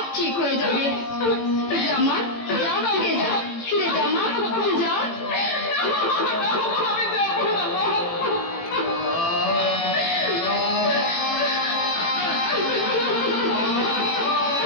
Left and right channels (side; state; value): right; late; 18 ms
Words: ঠিক হয়ে যাবে। যা মা, যা ফিরে যা, ফিরে যা মা, যা।